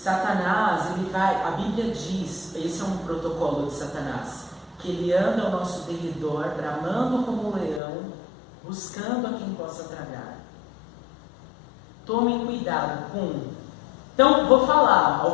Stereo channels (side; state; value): right; drops out; at 7.8 s